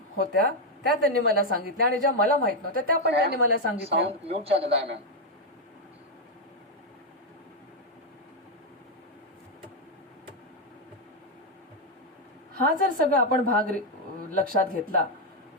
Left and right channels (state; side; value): normal; both; correlation 0.02